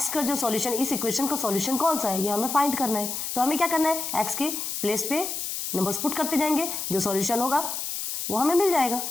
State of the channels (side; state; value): left; noise; hiss, 4 dB below the sound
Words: का जो सॉल्यूशन, इस इक्वेशन का सॉल्यूशन कौन सा है, ये हमें फाइंड करना है। तो हमें क्या करना है? x के प्लेस पे नंबर्स पुट करते जाएंगे, जो सॉल्यूशन होगा वो हमें मिल जाएगा।